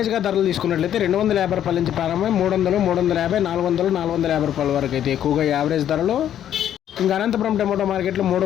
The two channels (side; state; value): right; quieter; 10.6 dB